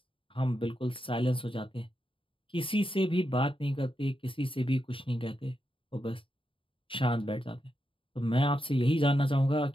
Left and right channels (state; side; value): late; right; 0.25 ms